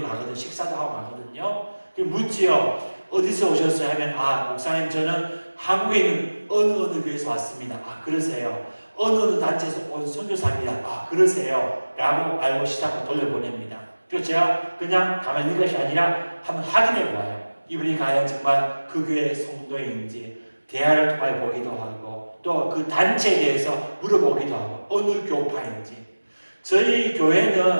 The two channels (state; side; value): inverted; both; correlation -1.00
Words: 가거든요. 식사도 하고 가거든요. 묻지요. 어디서 오셨어요? 하면 목사님 저는 한국에 있는 어느 교회에서 왔습니다. 그러세요. 어느 단체에서 온 선교사입니다. 그러세요. 라고 알고 시작하고 돌려보냅니다. 그래서 제가 그냥 가만히 있는 것이 아니라 한번 확인해 보아요. 이분이 과연 정말 그 교회 성도인지 대화를 통해 보기도 하고 또 그 단체에 대해서 물어보기도 하고 어느 교파인지. 저희